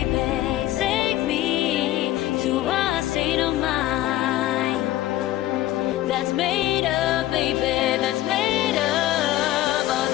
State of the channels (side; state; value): right; quieter; 15.0 dB